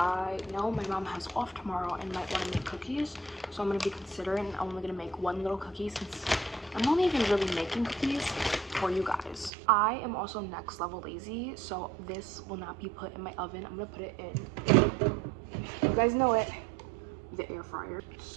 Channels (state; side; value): drops out; left; at 9.5 s